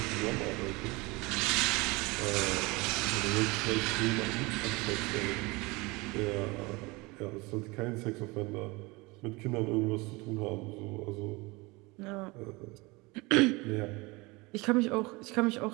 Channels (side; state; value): left; quieter; 24.5 dB